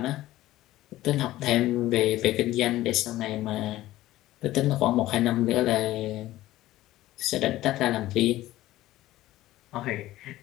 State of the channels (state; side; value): quieter; right; 15.8 dB